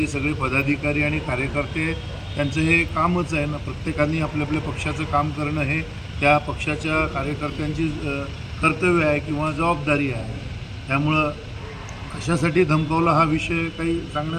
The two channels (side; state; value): both; identical; correlation 1.00